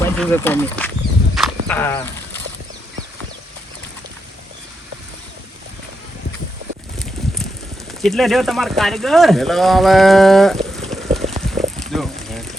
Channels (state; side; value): normal; both; correlation 0.84